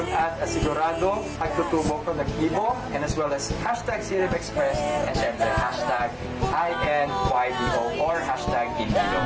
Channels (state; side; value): identical; both; correlation 1.00